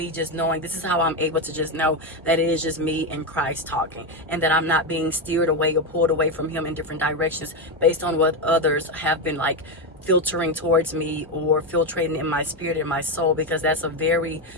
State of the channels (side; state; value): both; normal; correlation 0.11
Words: just knowing. This is how I'm able to just know that it is just me and Christ talking, and that I'm not being steered away or pulled away from him in different directions based on what others have been like filtering towards me or filtrating in my spirit and my soul, because that's a very,